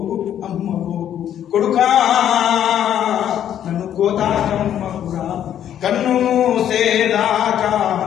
కొడుకా నన్ను కోతాకమ్మకురా. కన్ను మూసేదాకా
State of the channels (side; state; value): right; quieter; 10.3 dB